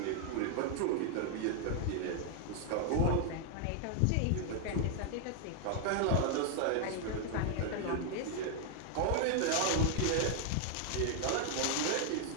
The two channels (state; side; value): different; both; correlation 0.00